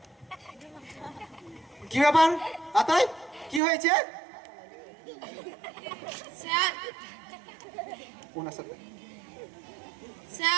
যে কি ব্যাপার আতাই, কি হয়েছে? স্যার, ওনার সাথে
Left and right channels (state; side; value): drops out; left; at 3.6 s